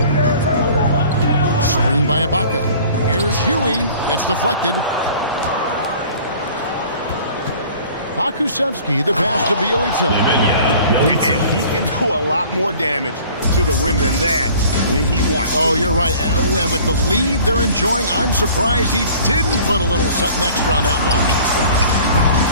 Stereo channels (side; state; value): both; inverted; correlation -0.48